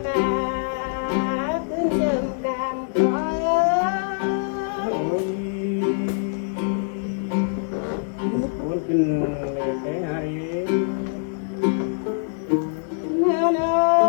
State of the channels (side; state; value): right; silent; digital silence